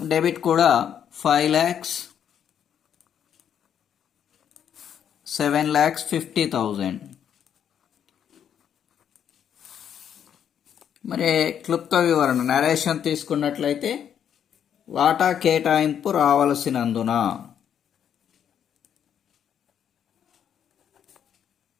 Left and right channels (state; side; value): quieter; right; 8.9 dB